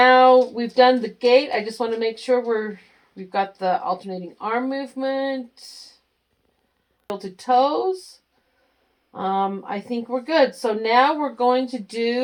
we've done the gait. I just want to make sure we've got the alternating arm movement. To toes. I think we're good. So now we're going to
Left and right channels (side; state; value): both; identical; correlation 1.00